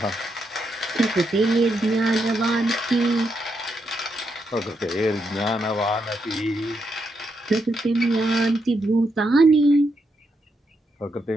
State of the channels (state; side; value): normal; both; correlation 0.81